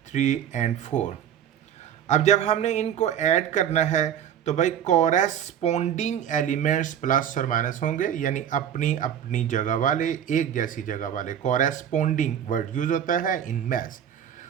3 एंड 4। अब जब हमने इनको ऐड करना है तो भाई कॉरेस्पोंडिंग एलिमेंट्स प्लस और माइनस होंगे, यानी अपनी अपनी जगह वाले, एक जैसी जगह वाले। कॉरेस्पोंडिंग वर्ड यूज होता है इन मैथ्स।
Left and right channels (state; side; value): quieter; left; 9.4 dB